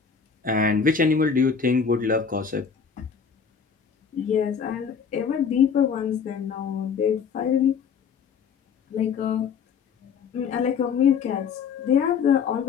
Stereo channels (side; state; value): right; quieter; 6.4 dB